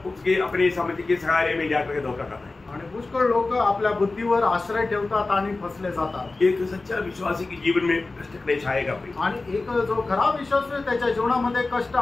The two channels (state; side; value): quieter; right; 3.4 dB